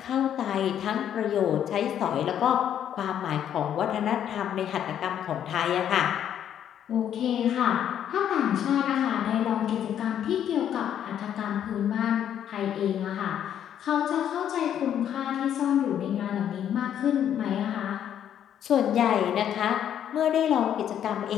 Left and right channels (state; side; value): quieter; right; 9.8 dB